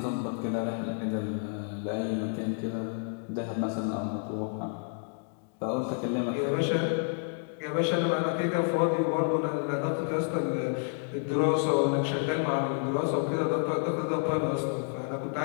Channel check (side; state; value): right; silent; 58 dB below the other